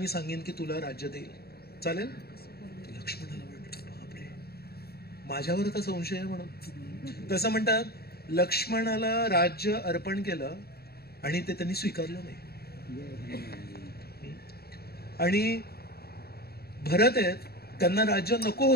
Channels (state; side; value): late; right; 0.46 ms